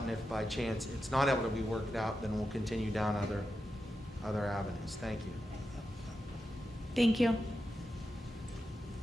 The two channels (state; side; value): normal; both; correlation 0.89